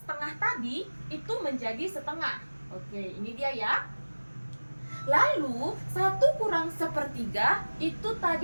tadi itu menjadi setengah. Oke, ini dia ya. Lalu 1 kurang sepertiga itu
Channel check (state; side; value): inverted; both; correlation -1.00